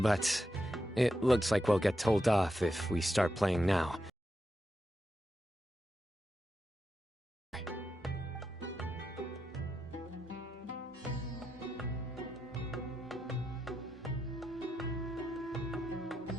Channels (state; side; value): normal; both; correlation 0.85